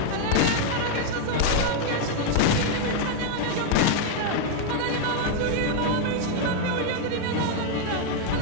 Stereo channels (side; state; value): both; different; correlation 0.00